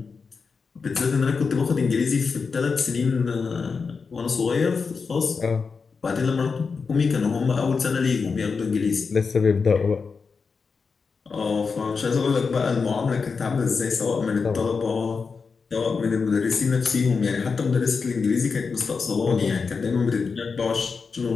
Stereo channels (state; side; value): quieter; right; 5.1 dB